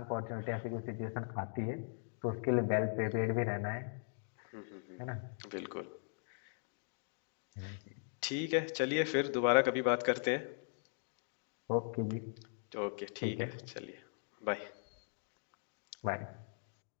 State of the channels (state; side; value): silent; right; digital silence